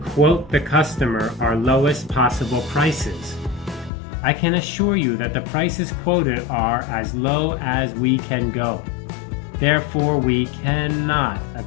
the customer our lowest possible prices. I can assure you that the prices quoted are as low as we can go. Therefore, we cannot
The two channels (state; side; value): drops out; right; at 3.9 s